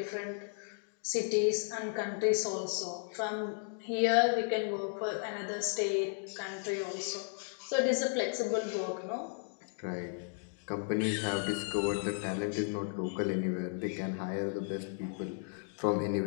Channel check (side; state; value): right; silent; 55 dB below the other